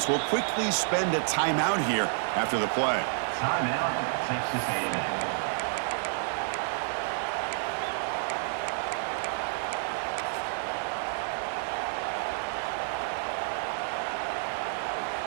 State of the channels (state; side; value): silent; left; digital silence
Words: will quickly spend a timeout here after the play. Timeout, Texas A&M.